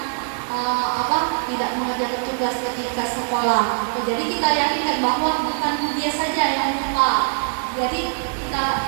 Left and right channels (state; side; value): silent; left; 64 dB below the other